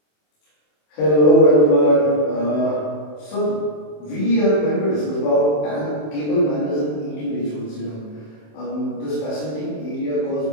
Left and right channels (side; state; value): right; late; 27 ms